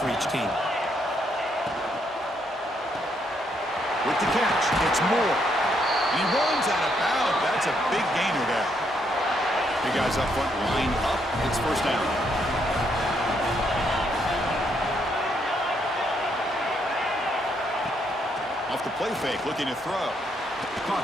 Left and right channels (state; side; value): normal; both; correlation 0.74